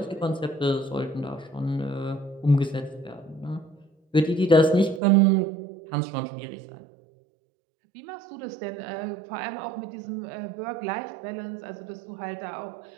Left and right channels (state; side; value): drops out; left; at 5.0 s